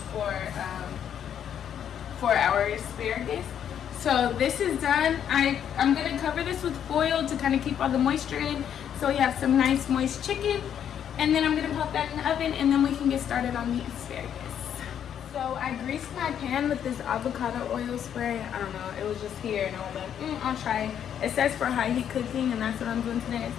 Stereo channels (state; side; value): quieter; right; 9.1 dB